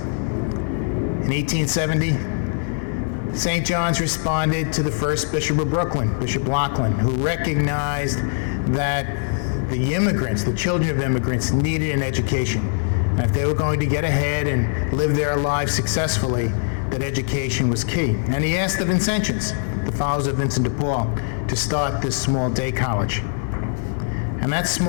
In 1870, St. John's responded to the first Bishop of Brooklyn, Bishop Laughlin, who recognized that the immigrants, the children of immigrants, needed an education. And if they were going to get ahead and live their lives successfully, that education was key. And he asked the Vincentians, the followers of Vincent de Paul, to start this small day college. And that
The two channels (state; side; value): silent; right; 64 dB below the other